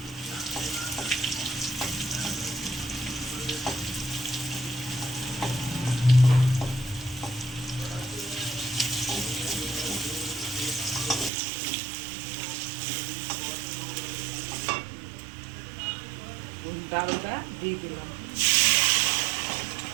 ডালটা দিয়ে দিলাম।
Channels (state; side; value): drops out; left; at 11.3 s